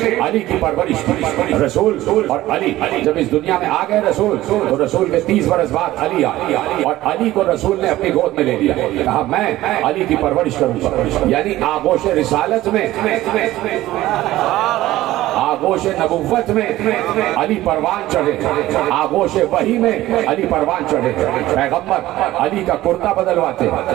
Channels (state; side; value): quieter; left; 15.9 dB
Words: علی کی پرورش کی. رسول اور علی جب اس دنیا میں آ گئے رسول, تو رسول کے 30 برس بعد علی آئے, اور علی کو رسول نے اپنی گود میں لے لیا. کہا میں علی کی پرورش کروں گا. یعنی آغوش رسالت میں, آغوش نبوت میں علی پروان چڑھے, آغوش وحی میں علی پروان چڑھے. پیغمبر علی کا کرتا بدلواتے,